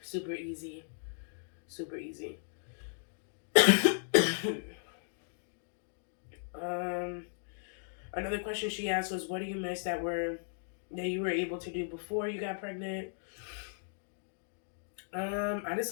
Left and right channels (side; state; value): right; silent; digital silence